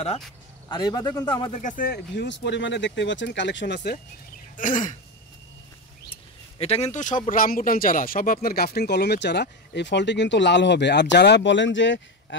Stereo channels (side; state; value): both; normal; correlation 0.16